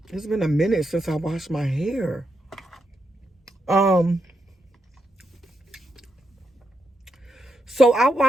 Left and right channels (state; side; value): normal; both; correlation 0.83